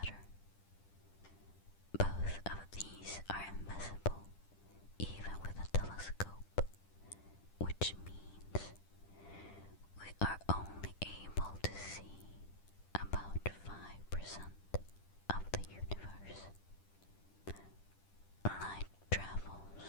Both of these are invisible even with a telescope, which means we are only able to see about 5% of the universe. Light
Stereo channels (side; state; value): right; late; 10 ms